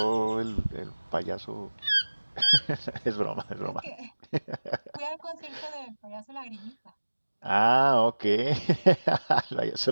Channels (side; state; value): both; inverted; correlation -1.00